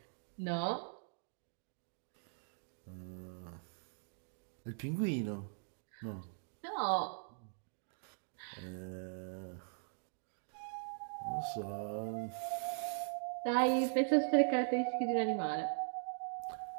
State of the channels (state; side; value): silent; left; digital silence